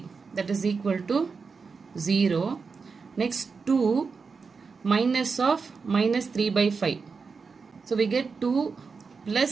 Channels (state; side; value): quieter; left; 5.0 dB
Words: that is equal to 0. Next 2 minus of minus 3 by 5. So we get 2